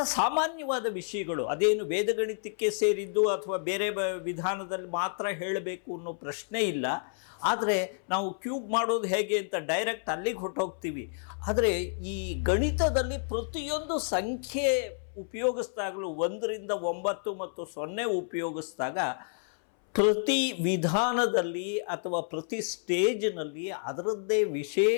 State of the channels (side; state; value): right; silent; 58 dB below the other